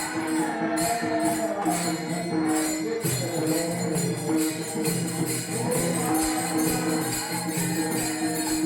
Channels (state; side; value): identical; both; correlation 1.00